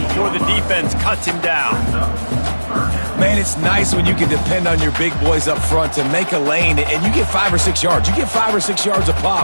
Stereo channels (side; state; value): both; inverted; correlation -1.00